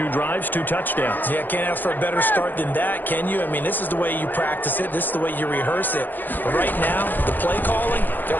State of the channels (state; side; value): late; right; 0.088 ms